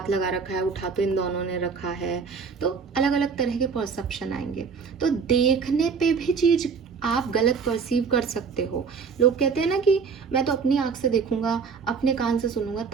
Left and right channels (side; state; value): left; quieter; 5.7 dB